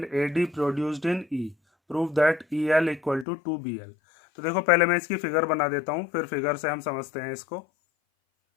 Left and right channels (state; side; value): drops out; right; at 3.2 s